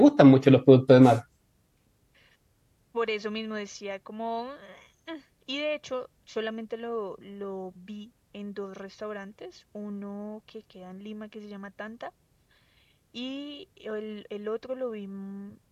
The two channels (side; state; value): both; identical; correlation 1.00